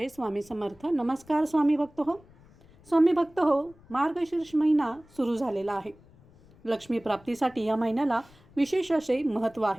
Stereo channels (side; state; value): left; noise; rumble, 27 dB below the sound